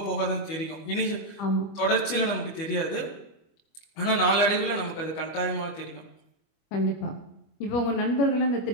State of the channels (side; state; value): right; late; 25 ms